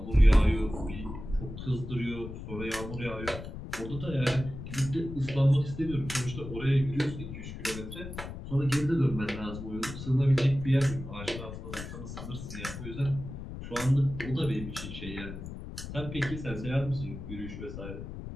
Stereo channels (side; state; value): left; noise; rumble, 9 dB below the sound